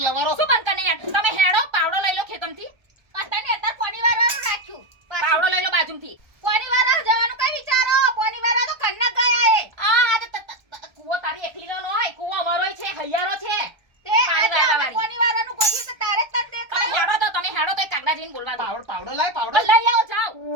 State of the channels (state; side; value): late; left; 1.3 ms